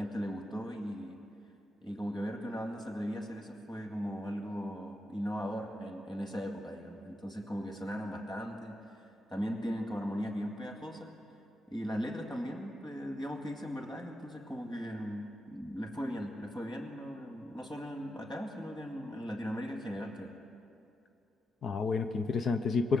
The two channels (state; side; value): normal; both; correlation 0.86